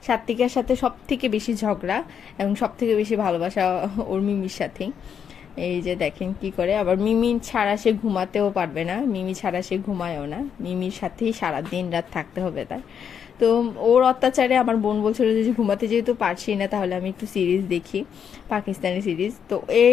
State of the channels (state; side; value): quieter; right; 7.8 dB